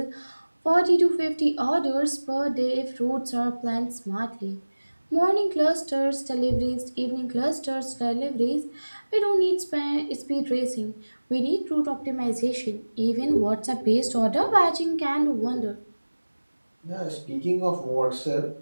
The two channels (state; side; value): inverted; both; correlation -1.00